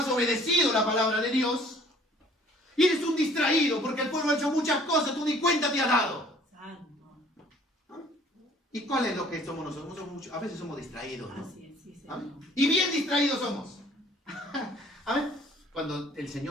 obedecido la palabra de Dios. Y eres un distraído, porque el pueblo ha hecho muchas cosas, tú ni cuenta te has dado. ¿Y cuál es lo que somos nosotros? A veces somos distraídos, ¿no? Y bien distraídos somos. ¿Amén? Cuando el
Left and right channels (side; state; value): both; normal; correlation 0.55